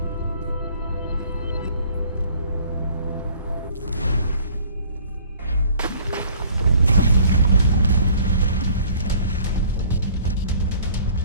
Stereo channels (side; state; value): both; inverted; correlation -0.54